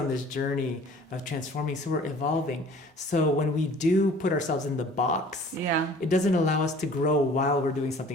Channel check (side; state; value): both; normal; correlation 0.49